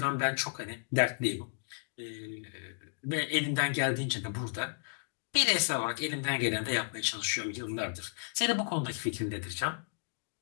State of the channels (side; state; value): right; silent; digital silence